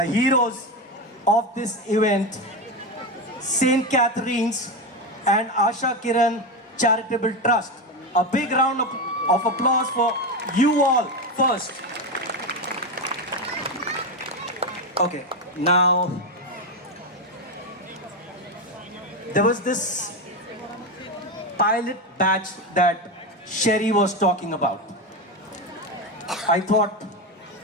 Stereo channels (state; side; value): normal; both; correlation 0.14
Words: heroes of this event, St. Catherine's and Asha Kiran Charitable Trust. A big round of applause for you all first. Okay, now there was this pilot batch that Sherry was talking about. I thought